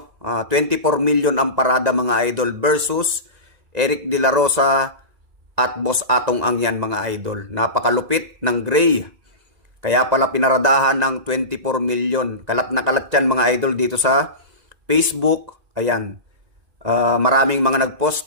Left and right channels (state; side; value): late; left; 1.9 ms